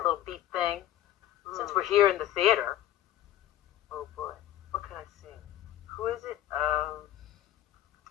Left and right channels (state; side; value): quieter; right; 12.8 dB